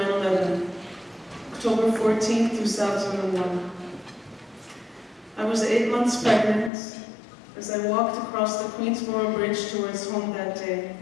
October 14, 2001. I was 8 months pregnant as I walked across the Queensboro Bridge towards home that day.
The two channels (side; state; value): right; drops out; at 6.7 s